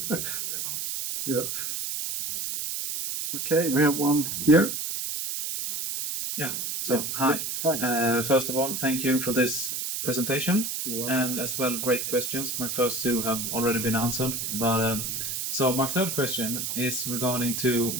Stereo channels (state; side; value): noise; right; hiss, 3 dB below the sound